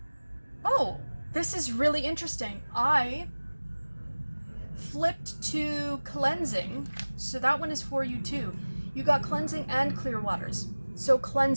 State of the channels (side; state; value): both; inverted; correlation -1.00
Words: oh, this is really interesting. I flipped to cleansing, so that one is for you too. You got cleansing and clear waters. So